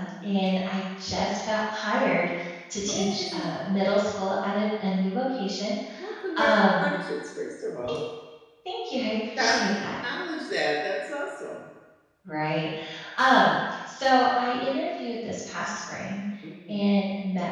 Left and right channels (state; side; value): identical; both; correlation 1.00